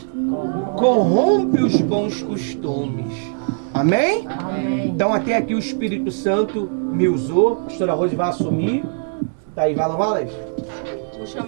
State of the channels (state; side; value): silent; left; 65 dB below the other